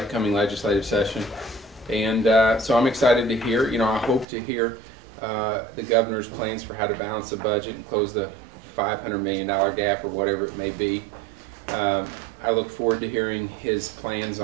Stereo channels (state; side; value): drops out; left; at 4.2 s